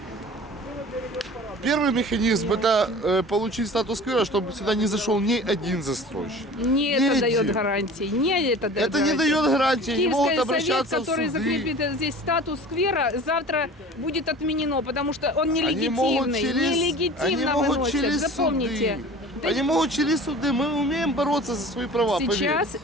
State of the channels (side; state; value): both; normal; correlation 0.41